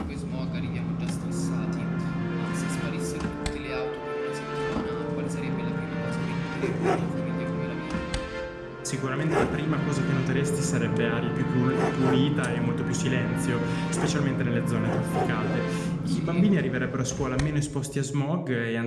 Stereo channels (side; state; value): both; identical; correlation 1.00